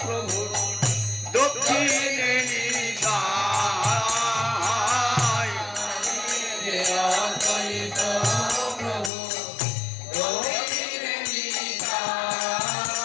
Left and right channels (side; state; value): right; drops out; at 9.1 s